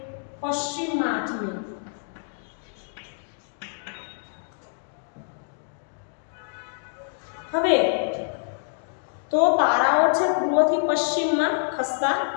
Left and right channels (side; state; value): right; silent; digital silence